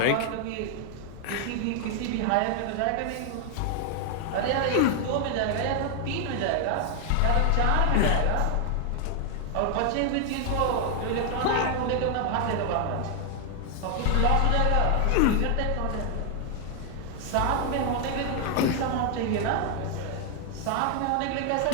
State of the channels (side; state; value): both; different; correlation 0.00